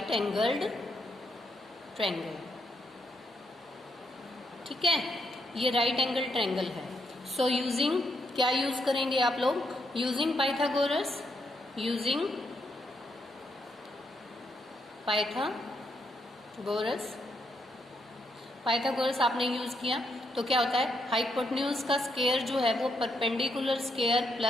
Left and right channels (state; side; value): normal; both; correlation 0.78